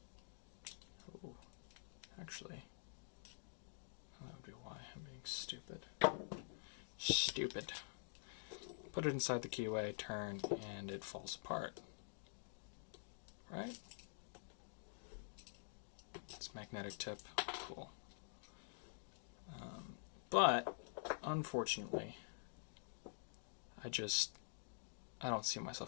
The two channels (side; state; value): right; silent; digital silence